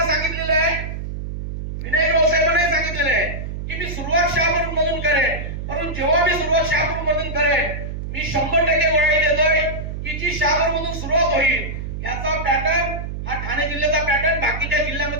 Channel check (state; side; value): noise; right; hum, 6 dB below the sound